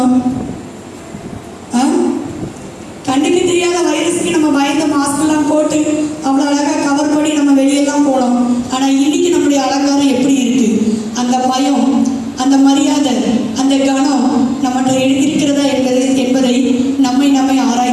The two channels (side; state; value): both; identical; correlation 1.00